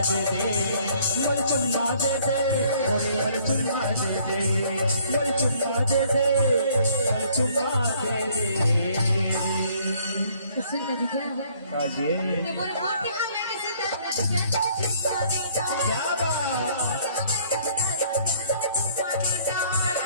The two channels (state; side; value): inverted; both; correlation -0.61